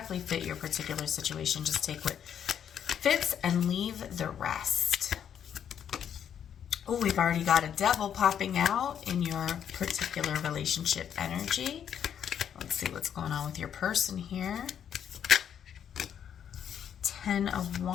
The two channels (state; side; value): quieter; right; 8.8 dB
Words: fit your particular situation. Just take what fits and leave the rest. Oh, we've already got a devil popping out in your particular relationship energy. Let's see what's going on with your person here. 10 of